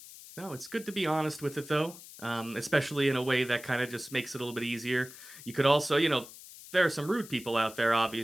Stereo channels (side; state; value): left; noise; hiss, 17 dB below the sound